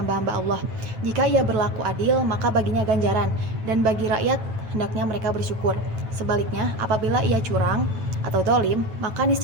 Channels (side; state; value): left; late; 9.1 ms